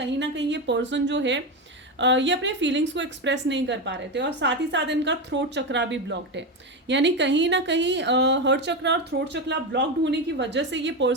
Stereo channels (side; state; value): both; normal; correlation 0.15